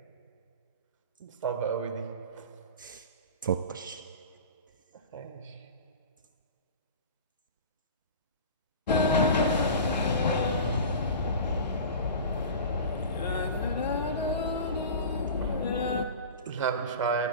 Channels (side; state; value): both; inverted; correlation -0.35